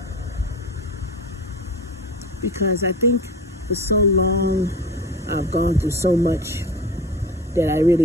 because I think for so long I've gone through so much that I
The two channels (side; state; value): both; normal; correlation 0.33